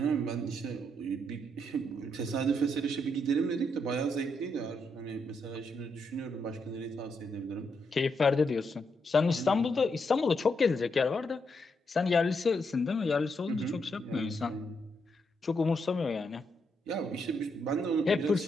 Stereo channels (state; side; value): normal; both; correlation 0.80